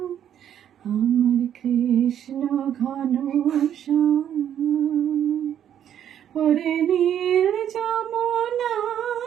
আমার কৃষ্ণ ঘনশ্যাম। ওরে নীল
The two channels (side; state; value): left; quieter; 9.9 dB